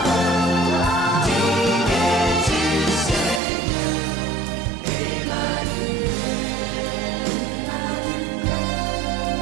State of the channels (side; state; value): left; drops out; at 3.4 s